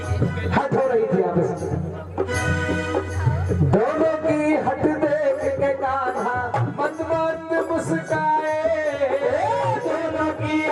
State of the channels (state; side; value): identical; both; correlation 1.00